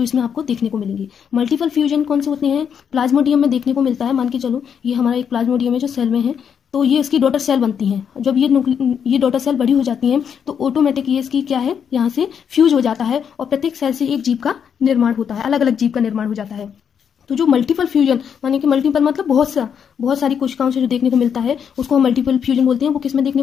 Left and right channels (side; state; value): right; quieter; 7.6 dB